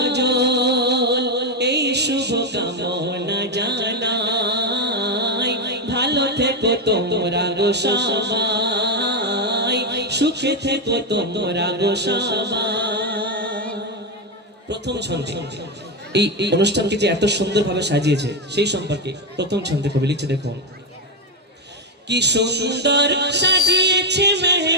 এই শুভ কামনা জানাই ভালো থেকো তোমরা গো সবাই সুখে থেকো তোমরা গো সবাই। প্রথম ছন্দে এই অনুষ্ঠানকে যে এত সুন্দরভাবে সাজিয়েছে সেই সম্পর্কে প্রথম ছন্দে কবি লিখছে দেখুন। কি সুন্দর সাজিয়েছে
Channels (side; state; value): both; normal; correlation 0.07